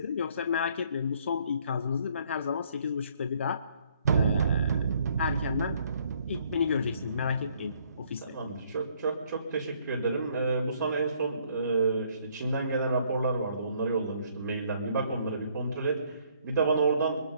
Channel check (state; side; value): inverted; both; correlation -0.65